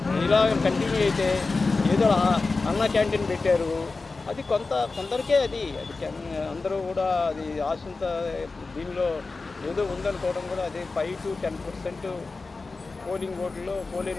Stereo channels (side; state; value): right; quieter; 3.8 dB